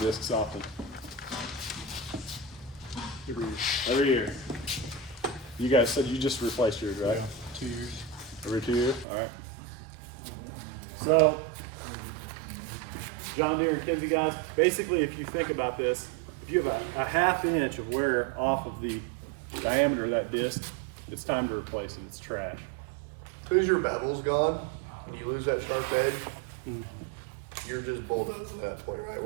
often? Every year. You guys said you just replaced yours, right? 2 years. Every 2 years, all right. So, John Deere and Kinsey guys, basically if you think about this, if you have a half inch of wear off of the diameter of that disc, it's time to replace it, it's trash. As soon as your bevel's gone, and you lose that sharp edge, you're just bulldozing at that point, right?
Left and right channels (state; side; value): drops out; left; at 9.1 s